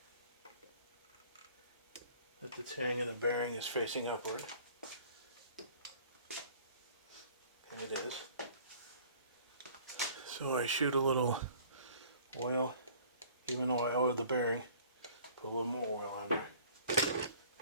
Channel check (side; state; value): both; inverted; correlation -0.50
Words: that the tang of the bearing is facing upward. And it is. So I shoot a little oil, even though I oiled the bearing, put a little more oil on there.